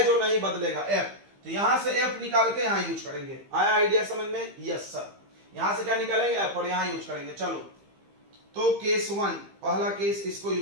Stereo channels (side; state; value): left; late; 15 ms